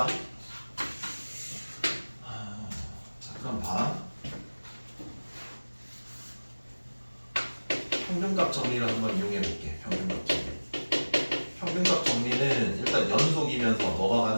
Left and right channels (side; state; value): both; inverted; correlation -1.00